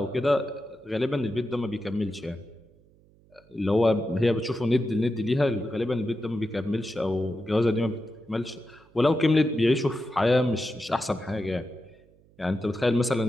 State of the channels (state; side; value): noise; right; hum, 30 dB below the sound